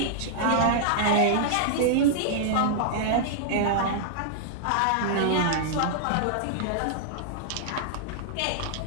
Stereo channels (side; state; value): both; different; correlation -0.01